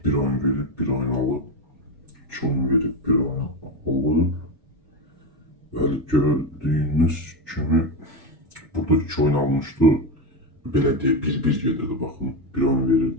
bir oyun verib, bir oyun alıb. 2 oyun verib, bir oyun alıb. Bəli, gördüyünüz kimi burada 2 oyun almışdı. Belə deyə bir gedirdi, baxın. Bir oyun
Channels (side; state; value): both; normal; correlation 0.14